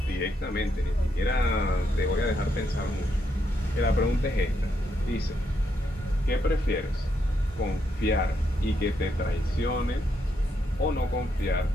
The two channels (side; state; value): both; normal; correlation 0.78